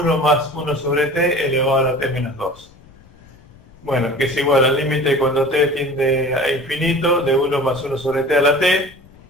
más 1 sobre t elevado a la t menos 2. Bueno, que es igual al límite cuando t tiende a infinito de 1 más 1 sobre t a la t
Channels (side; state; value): left; noise; rumble, 26 dB below the sound